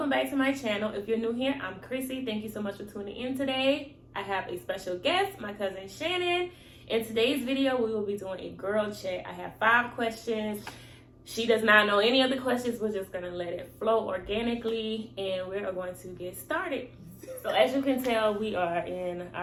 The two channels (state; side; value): identical; both; correlation 1.00